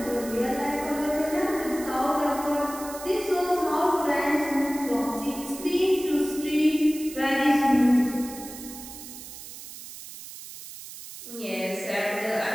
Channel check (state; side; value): noise; right; hiss, 13 dB below the sound